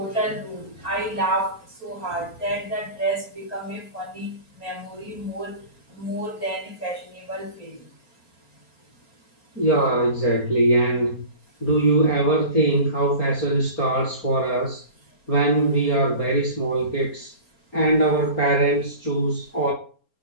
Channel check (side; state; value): right; late; 4.3 ms